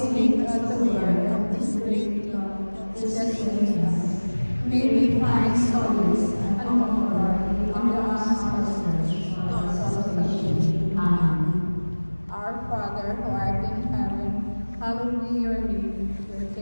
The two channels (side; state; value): both; inverted; correlation -1.00